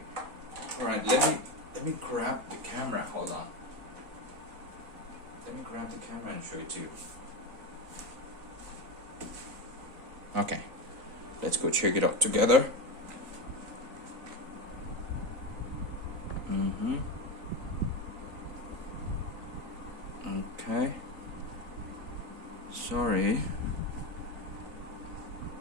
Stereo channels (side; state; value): left; late; 3.9 ms